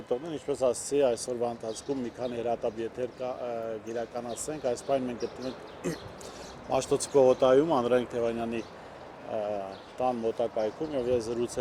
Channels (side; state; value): both; identical; correlation 1.00